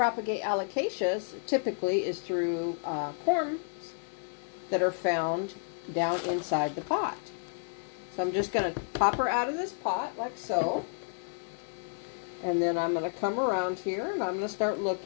alocasias typically is through corms that are found down inside the pot. So I'm just going to pop her out of this pot like so. And then I'm going to come around here and I'm going to start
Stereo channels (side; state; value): right; silent; digital silence